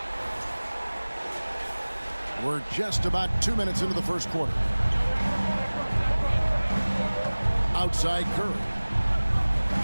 We're just about 2 minutes into the first quarter. Outside Curry.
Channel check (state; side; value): inverted; both; correlation -1.00